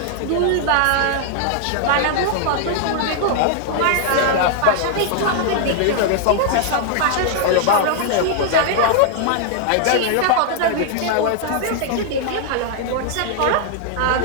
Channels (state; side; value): different; both; correlation -0.01